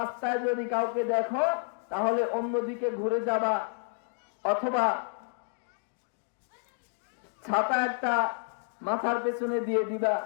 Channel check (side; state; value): right; silent; digital silence